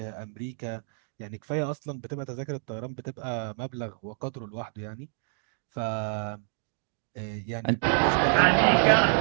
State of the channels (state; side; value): silent; left; digital silence